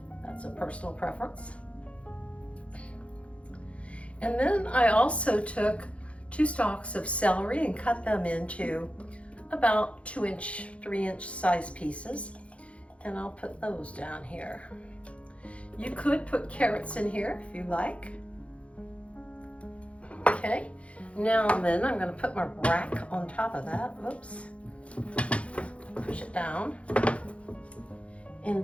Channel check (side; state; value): right; late; 0.062 ms